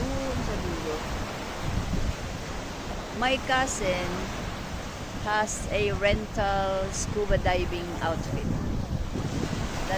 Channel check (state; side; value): identical; both; correlation 1.00